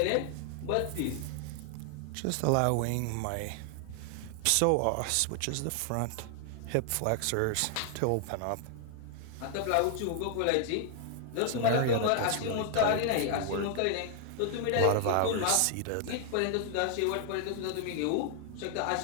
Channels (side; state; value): both; different; correlation 0.00